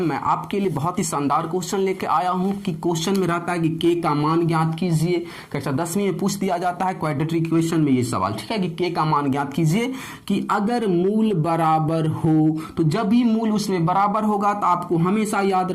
मैं आपके लिए बहुत ही शानदार क्वेश्चन लेके आया हूं कि क्वेश्चन में रहता है कि के का मान ज्ञात कीजिए। कक्षा 10वीं में पूछ दिया जाता है क्वाड्रेटिक इक्वेशन में ये सवाल, ठीक है, कि के का मान ज्ञात कीजिए कि अगर मूल बराबर हो। तो जब भी मूल उसमें बराबर होगा तो आपको हमेशा याद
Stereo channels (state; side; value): identical; both; correlation 1.00